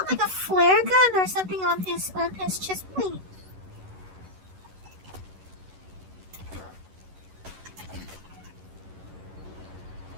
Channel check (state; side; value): late; left; 11 ms